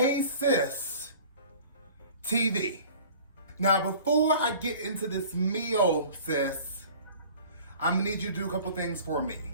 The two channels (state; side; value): inverted; both; correlation -0.45